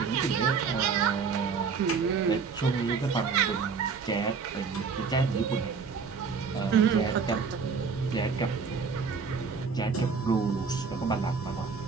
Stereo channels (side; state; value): left; quieter; 5.4 dB